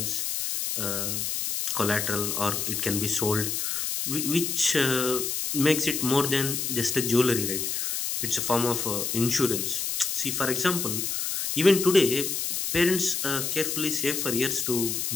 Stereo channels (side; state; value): left; noise; hiss, 1 dB below the sound